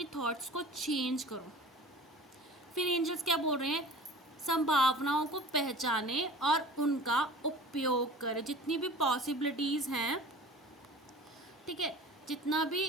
थॉट्स को चेंज करो। फिर एंजल्स क्या बोल रहे हैं, संभावनाओं को पहचाने और उनका उपयोग करें। जितनी भी पॉसिबिलिटीज़ हैं, ठीक है,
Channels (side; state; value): both; normal; correlation 0.41